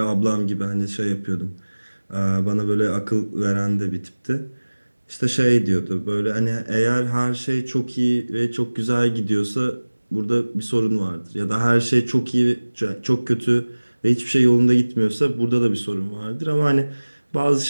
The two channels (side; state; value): both; inverted; correlation -1.00